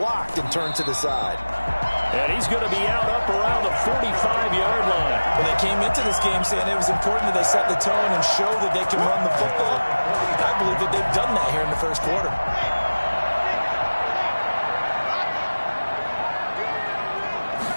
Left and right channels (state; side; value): inverted; both; correlation -1.00